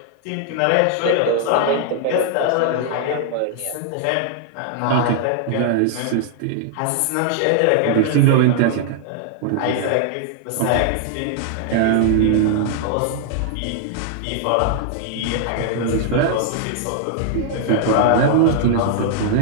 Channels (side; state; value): both; different; correlation -0.01